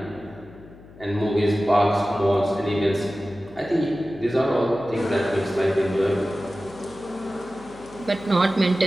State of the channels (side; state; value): left; noise; hum, 21 dB below the sound